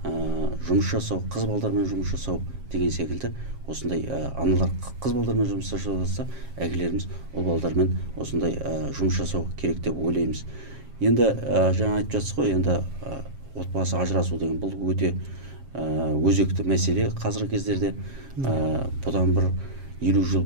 жұмыс жасау, қыз балдармен жұмыс жасау деген секілді осындай аналар қыз балдармен жұмыс жасаса, әкелеріміз ұл балдармен осындай жұмыс жасау керек деп ойлаймыз. Енді жаңа айтып жатсыз ғой, енді отбасы ажырасу деген бұл өте өзекті мәселе қазіргі кездерде. Бұдан бір 50 жыл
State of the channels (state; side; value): late; left; 7.4 ms